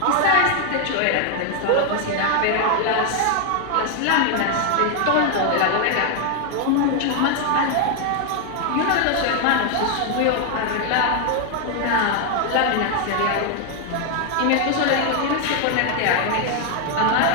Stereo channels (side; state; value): both; different; correlation 0.01